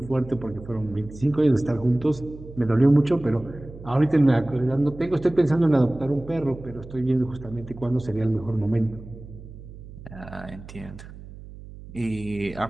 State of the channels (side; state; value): right; noise; hum, 16 dB below the sound